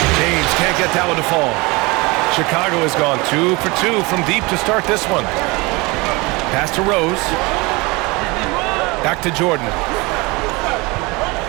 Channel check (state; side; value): quieter; left; 24.9 dB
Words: James can't get that one to fall. Chicago has gone 2 for 2 from deep to start this one. Pass to Rose. Back to Jordan.